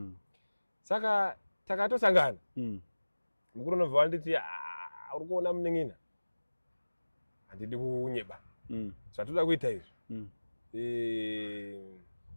saka takatosangana mukuru unobva wanditi uri kuona muneng'ina handidi kunyeba zvatoda kuita izvi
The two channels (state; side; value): inverted; both; correlation -1.00